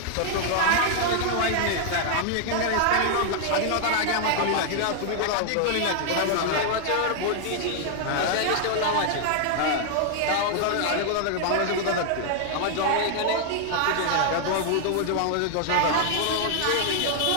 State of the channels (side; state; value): both; different; correlation 0.00